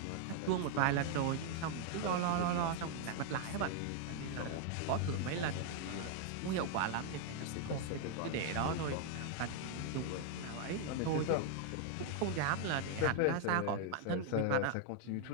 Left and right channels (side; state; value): both; different; correlation 0.00